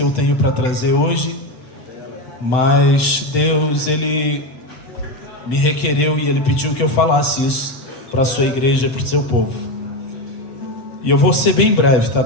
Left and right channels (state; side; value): late; right; 7.8 ms